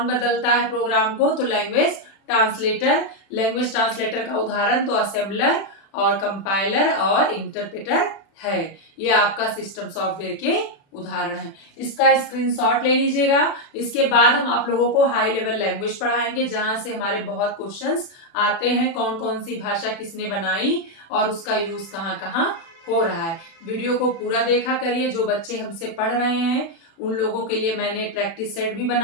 बदलता है प्रोग्राम को तो लैंग्वेज ट्रांसलेटर। लैंग्वेज ट्रांसलेटर का उदाहरण तो असेंबलर और कंपाइलर और इंटरप्रेटर है। ये आपका सिस्टम सॉफ्टवेयर के उदाहरण है। इसका स्क्रीनशॉट ले लीजिएगा। इसके बाद हम आप लोगों को हाई लेवल लैंग्वेज पढ़ाएंगे, जहां से हमारे बहुत क्वेश्चंस आते हैं, कौन कौन सी भाषा किसने बनाई और उसका यूज कहाँ कहाँ हो रहा है। वीडियो को पूरा देखा करिए। जो बच्चे हमसे पढ़ रहे हैं उन लोगों के लिए मैंने प्रैक्टिस सेट भी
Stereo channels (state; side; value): late; right; 36 ms